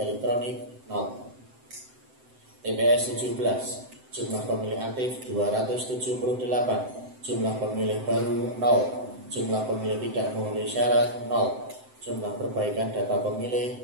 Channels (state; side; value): late; left; 7.8 ms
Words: 0. TPS 17. Jumlah pemilih aktif 278. Jumlah pemilih baru 0. Jumlah pemilih tidak memenuhi syarat 0. Jumlah perbaikan data